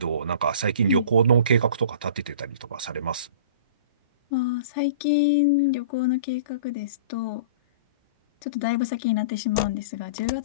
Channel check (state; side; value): inverted; both; correlation -0.40